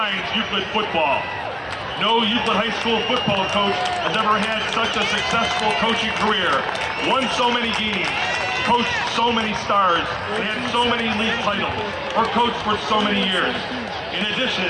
Euclid football. No Euclid High School football coach has ever had such a successful coaching career, won so many games, coached so many stars, and had so many league titles, or coached for so many years. In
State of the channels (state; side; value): identical; both; correlation 1.00